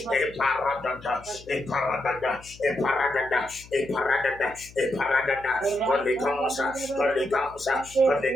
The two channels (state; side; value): noise; left; hum, 21 dB below the sound